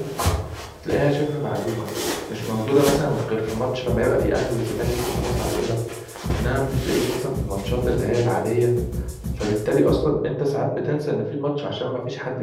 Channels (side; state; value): both; identical; correlation 1.00